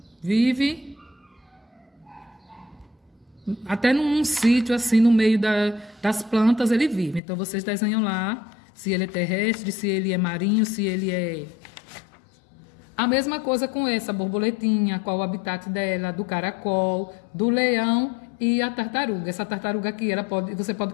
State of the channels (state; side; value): drops out; right; at 7.2 s